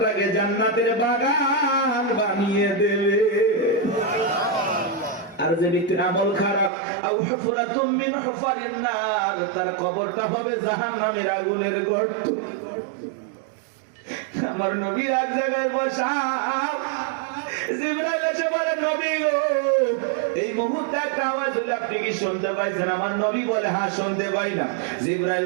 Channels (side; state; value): left; drops out; at 6.7 s